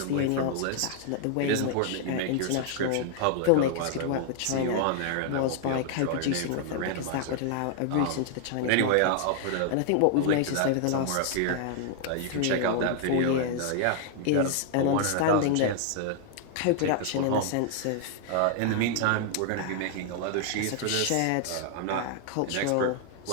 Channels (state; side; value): different; both; correlation 0.00